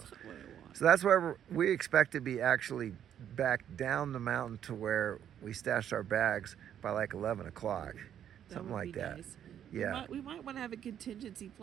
not what I want. So that's why we expect to be actually back down the mountain to where we stashed our bags by like 11 o'clock. Something like that. Nice. Yeah. We might want to have a contingency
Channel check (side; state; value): left; quieter; 9.8 dB